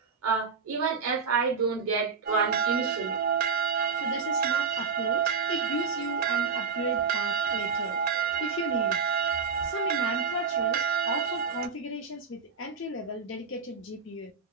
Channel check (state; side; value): quieter; left; 5.4 dB